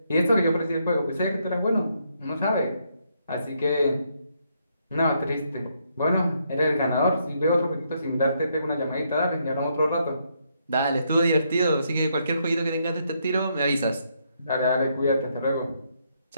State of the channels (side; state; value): both; inverted; correlation -0.75